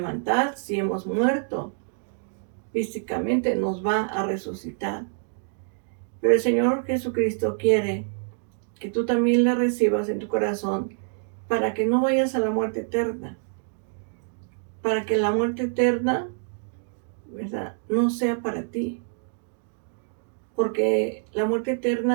si hemos muerto físicamente, nos va a resucitar. Pero el Señor Jesucristo quiere que tú también le recibas en tu corazón para que no vayas a la muerte eterna. Para que la muerte eterna, ¿verdad?, no sea para ti. Porque la muerte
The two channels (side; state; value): left; silent; digital silence